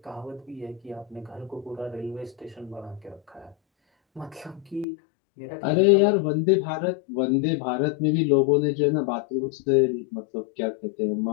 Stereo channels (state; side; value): drops out; right; at 4.9 s